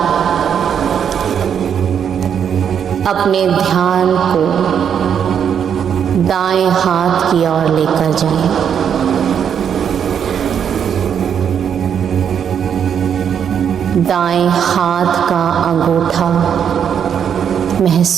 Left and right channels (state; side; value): quieter; left; 8.1 dB